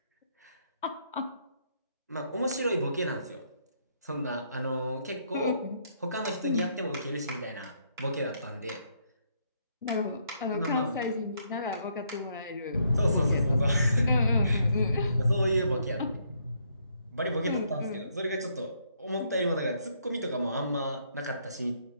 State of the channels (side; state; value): both; inverted; correlation -0.72